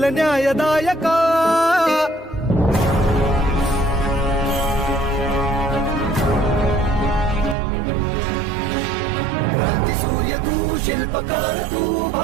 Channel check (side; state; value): left; drops out; at 7.6 s